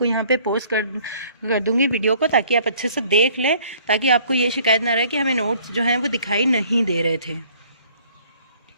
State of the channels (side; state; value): both; inverted; correlation -0.57